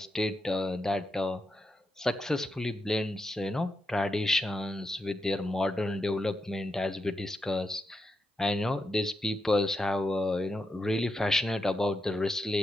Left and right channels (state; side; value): normal; both; correlation 0.85